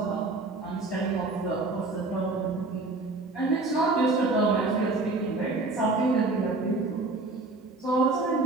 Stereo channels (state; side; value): quieter; left; 3.3 dB